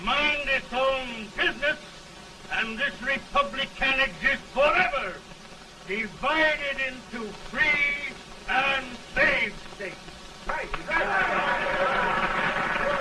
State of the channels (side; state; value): both; identical; correlation 1.00